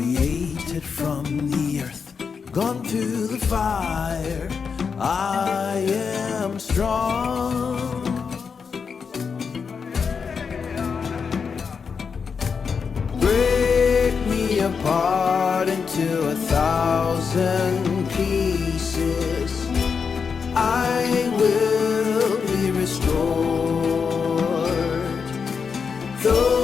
from the earth, gone through the fire. I am strong. Break me apart into 1,000 pieces. I will be restored.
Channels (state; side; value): quieter; right; 5.8 dB